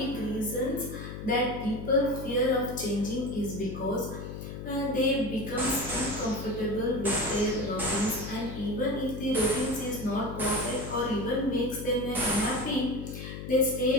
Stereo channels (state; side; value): noise; left; hum, 8 dB below the sound